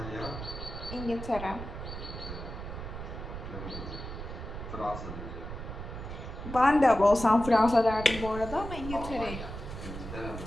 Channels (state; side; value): noise; right; rumble, 8 dB below the sound